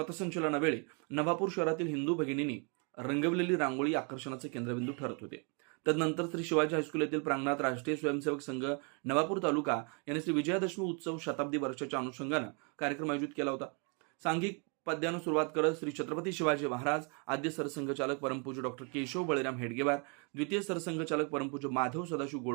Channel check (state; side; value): quieter; left; 36.0 dB